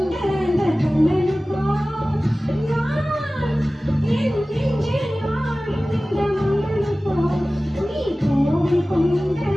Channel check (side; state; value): both; normal; correlation 0.97